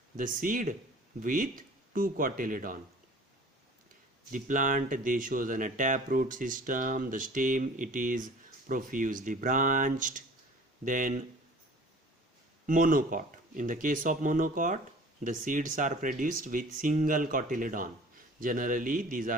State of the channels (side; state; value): both; normal; correlation 0.46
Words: the seed with two cotyledon. The plant they shows an taproot system. The stem it is profusely branched. Then monocot. In the case of monocot, the seeds are produced with single cotyledon. Generally, these